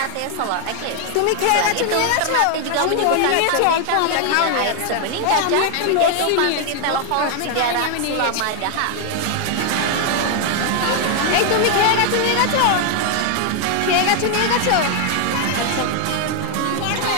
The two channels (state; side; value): different; both; correlation 0.00